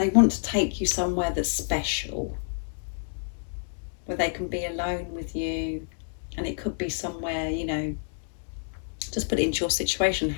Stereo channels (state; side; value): silent; right; 59 dB below the other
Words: want to take you somewhere that's special, where they can be alone with you, and it could be somewhere, you know, just put it into your situation,